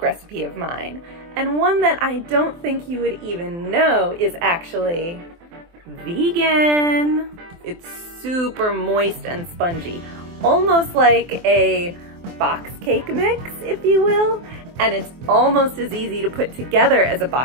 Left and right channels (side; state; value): left; late; 24 ms